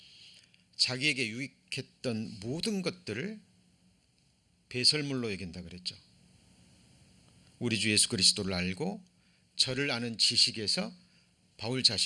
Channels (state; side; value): identical; both; correlation 1.00